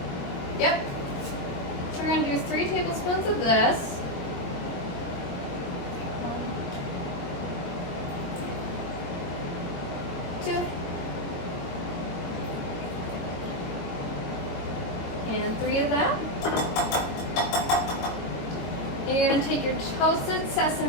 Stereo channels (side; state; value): right; late; 22 ms